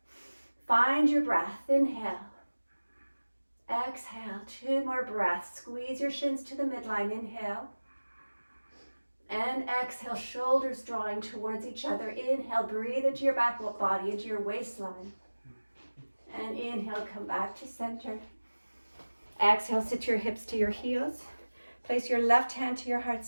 Find your breath. Inhale. Exhale. 2 more breaths. Squeeze your shins to the midline. Inhale. And exhale. Shoulders drawing towards each other. Inhale. Breathe into your back body, into your waistline. And inhale. Come back to center. Exhale. Sit your hips to your heels. Place your left hand to your heart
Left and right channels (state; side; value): inverted; both; correlation -1.00